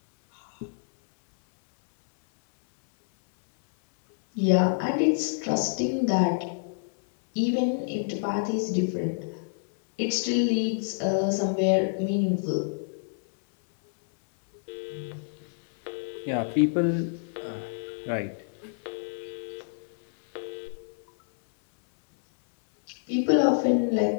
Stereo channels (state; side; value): silent; right; 60 dB below the other